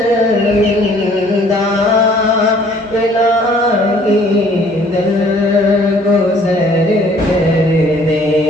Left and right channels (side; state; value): both; normal; correlation 0.57